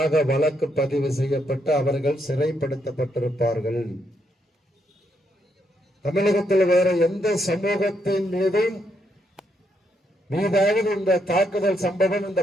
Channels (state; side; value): normal; both; correlation 0.77